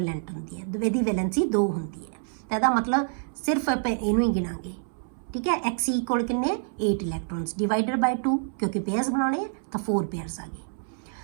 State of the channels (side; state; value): left; silent; 60 dB below the other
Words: ਹੁੰਦੀ ਹੈ, ਇਹਦੀ ਵੈਲੈਂਸੀ 2 ਹੁੰਦੀ ਹੈ। ਤਾਂ ਇਹਦਾ ਮਤਲਬ ਸਿਰਫ ਆਪਾਂ ਇਹਨੂੰ ਹੀ ਗਿਣਾਂਗੇ। ਠੀਕ ਹੈ, Xe ਕੋਲ ਕਿੰਨੇ? 8 ਇਲੈਕਟ੍ਰੋਨਸ ਡਿਵਾਈਡਡ ਬਾਈ 2, ਕਿਉਂਕਿ ਪੇਅਰਸ ਬਣਾਉਣੇ ਤਾਂ 4 ਪੇਅਰਸ ਆ ਗਏ।